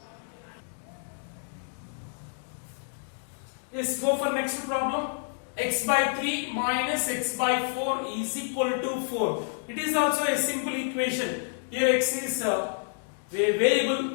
Let's go for next problem. X by 3 minus x by 4 is equal to 4. It is also a simple equation. Here x is a variable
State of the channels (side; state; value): right; silent; digital silence